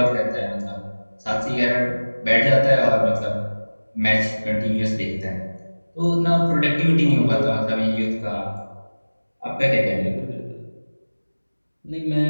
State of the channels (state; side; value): inverted; both; correlation -1.00